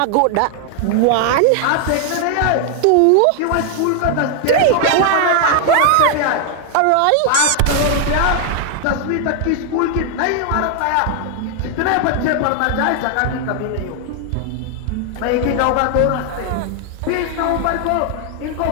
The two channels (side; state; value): both; different; correlation 0.00